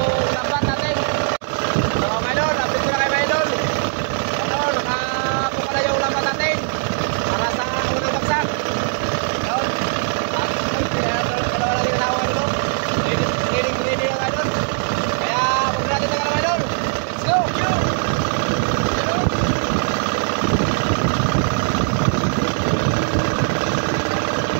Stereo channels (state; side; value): silent; left; 66 dB below the other